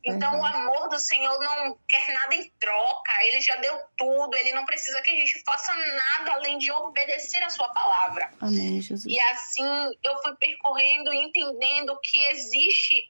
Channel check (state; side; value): inverted; both; correlation -1.00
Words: Então o amor do Senhor não quer nada em troca, ele já deu tudo, ele não precisa que a gente faça nada além de obedecer a sua palavra. Amém, Jesus. E assim eu fui percorrendo e entendendo que